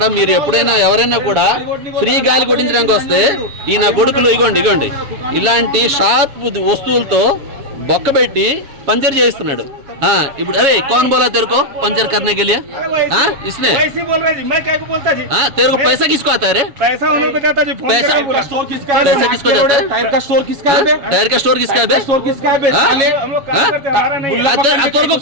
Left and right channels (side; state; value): left; late; 7.2 ms